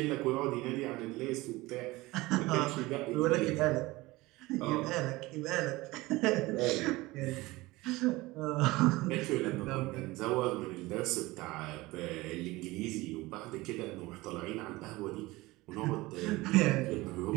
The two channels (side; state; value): left; quieter; 20.5 dB